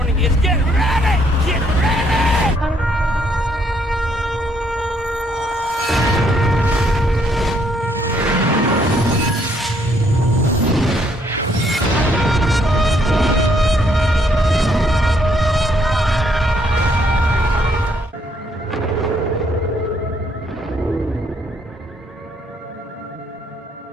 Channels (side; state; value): both; normal; correlation 0.70